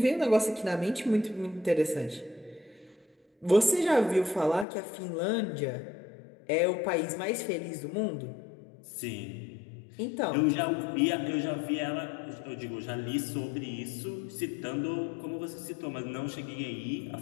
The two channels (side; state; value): right; drops out; at 4.7 s